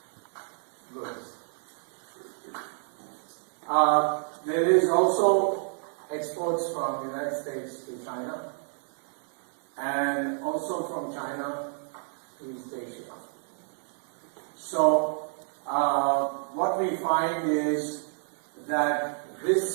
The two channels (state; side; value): silent; left; 58 dB below the other